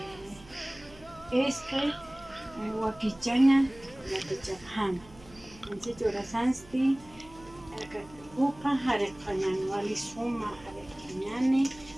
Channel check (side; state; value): right; noise; hum, 22 dB below the sound